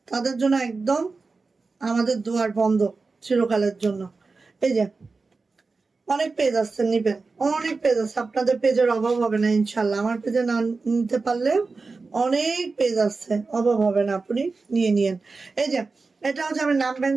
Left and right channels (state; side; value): quieter; left; 4.1 dB